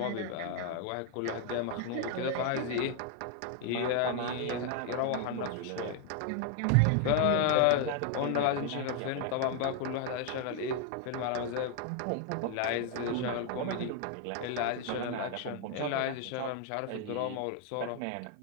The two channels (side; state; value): both; different; correlation 0.00